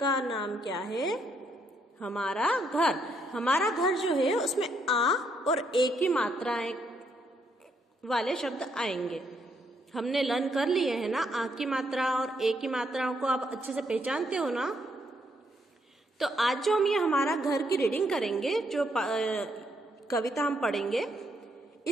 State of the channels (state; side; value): normal; both; correlation 0.74